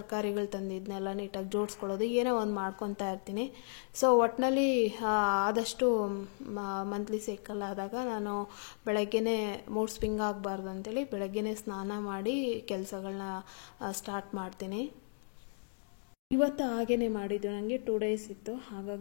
ತಂದಿದ್ದನ್ನೆಲ್ಲ ನೀಟಾಗಿ ಜೋಡಿಸ್ಕೊಳ್ಳೋದು ಏನೋ ಒಂದು ಮಾಡ್ಕೊತಾ ಇರ್ತೀನಿ. ಸೊ ಒಟ್ಟಿನಲ್ಲಿ ಆದಷ್ಟು ಮಂತ್ಲಿ ಸೈಕಲ್ ಆದಾಗ ನಾನು ಬೆಳಗ್ಗೆನೇ ಮೂಡ್ ಸ್ವಿಂಗ್ ಆಗಬಾರ್ದು ಅಂತೇಳಿ ಬೆಳಗ್ಗೆನೇ ಸ್ನಾನ ಮಾಡಿ ಕೆಲಸಗಳನ್ನ ಸ್ಟಾರ್ಟ್ ಮಾಡ್ತೀನಿ. ಇವತ್ತು ಹಾಗೇ ಮಾಡಿದ್ದು, ನನಗೆ 2 ಡೇಸ್ ಇತ್ತು.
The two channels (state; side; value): silent; right; digital silence